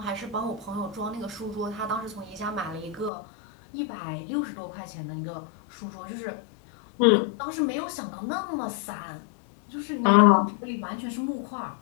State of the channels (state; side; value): drops out; right; at 3.1 s